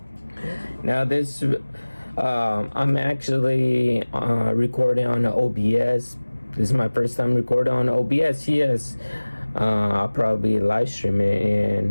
Now this, I'm actually recording on OBS. This is my first time recording on OBS, yes. I'll probably live stream it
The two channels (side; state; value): both; inverted; correlation -1.00